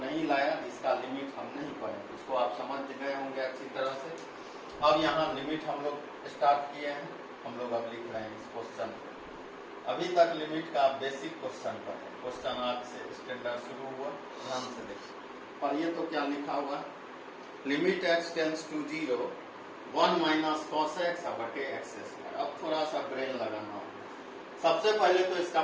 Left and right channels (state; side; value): identical; both; correlation 1.00